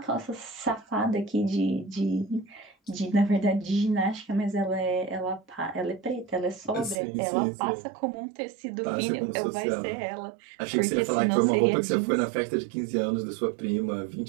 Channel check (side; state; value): left; drops out; at 7.0 s